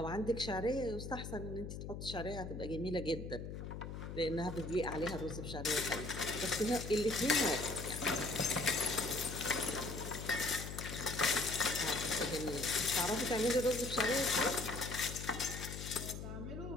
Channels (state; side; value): noise; left; hum, 7 dB below the sound